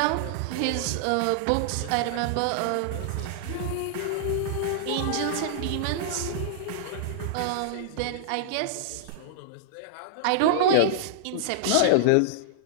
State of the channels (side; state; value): both; different; correlation -0.01